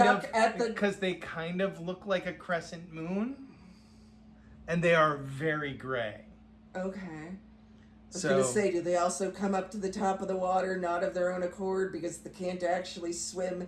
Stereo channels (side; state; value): both; identical; correlation 1.00